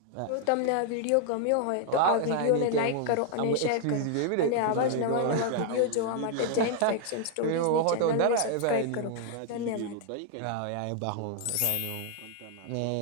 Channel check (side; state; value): both; different; correlation 0.00